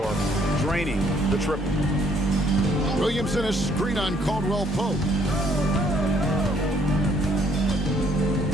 draining the triple. Williamson is screen on Caldwell Pope.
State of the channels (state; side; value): normal; both; correlation 0.65